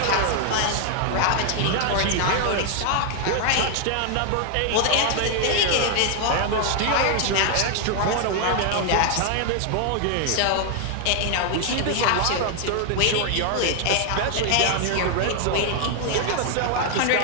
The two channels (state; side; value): different; both; correlation 0.00